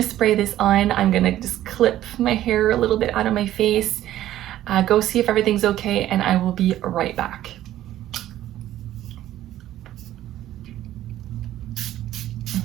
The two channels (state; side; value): quieter; left; 13.3 dB